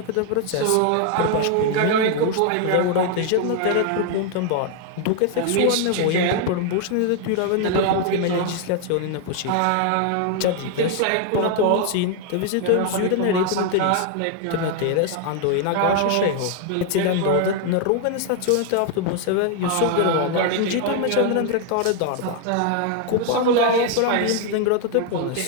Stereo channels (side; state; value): both; different; correlation 0.00